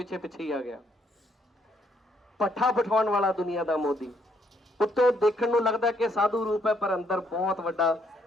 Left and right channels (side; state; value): both; normal; correlation 0.71